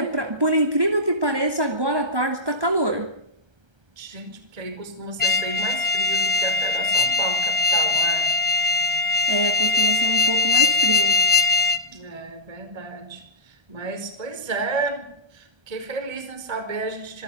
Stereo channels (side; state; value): left; late; 1.3 ms